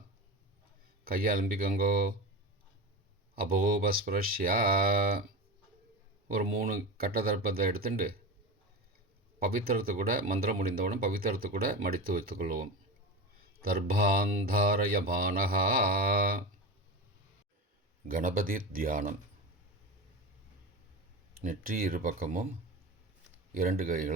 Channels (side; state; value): both; normal; correlation 0.25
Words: கையை அலம்பிக்கோங்கோ. அபோபஸ்பிரஷ்யா. ஒரு 3 கட்ட தர்ப்பத்தை எடுத்துட்டு பவித்திரத்தை கூட மந்திரம் முடிந்தவுடன் பவித்திரத்தை கூட மடித்து வைத்துக்கொள்வோம். தர்பாந்தாரயமானஹா. கணபதி தியானம். நெற்றி இரு பக்கமும் 2